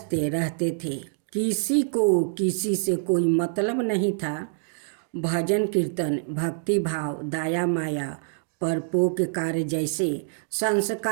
रहते थे। किसी को किसी से कोई मतलब नहीं था। भजन कीर्तन, भक्ति भाव, दया माया, परोपकार जैसे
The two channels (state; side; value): silent; left; digital silence